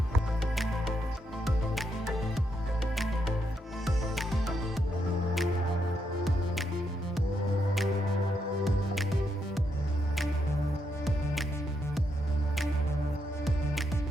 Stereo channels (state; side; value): normal; both; correlation 0.80